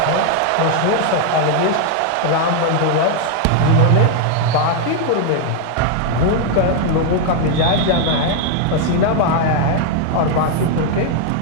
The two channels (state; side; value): different; both; correlation 0.00